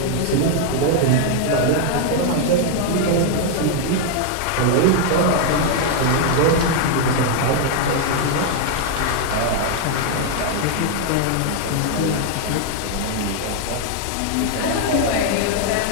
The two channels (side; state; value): both; different; correlation 0.00